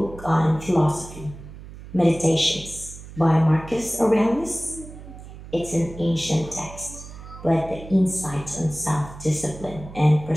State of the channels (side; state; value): right; noise; hum, 15 dB below the sound